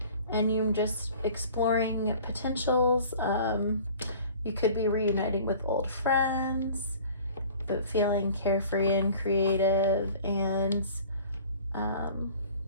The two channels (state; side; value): inverted; both; correlation -0.47